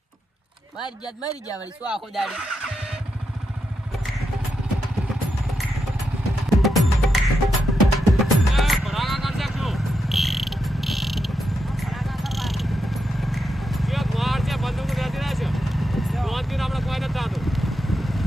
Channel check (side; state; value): both; normal; correlation 0.85